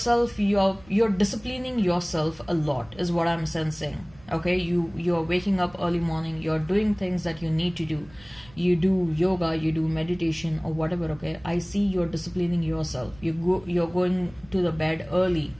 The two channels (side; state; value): right; noise; rumble, 24 dB below the sound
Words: you're disciplining yourself a lot, is what I'm sensing. Okay, you're waking up early morning, you're doing things that you need to do. You do yoga, you do meditation or whatever. Okay, I see you're disciplining yourself. You're going to the bed early.